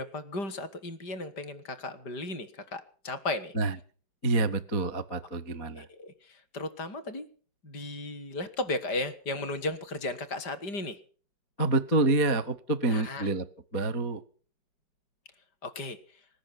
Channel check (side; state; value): right; late; 5.0 ms